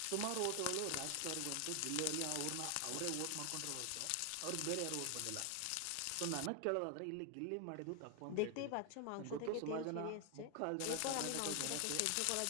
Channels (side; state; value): both; different; correlation 0.00